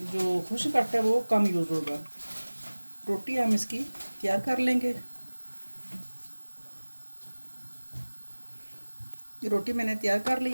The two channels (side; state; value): both; inverted; correlation -1.00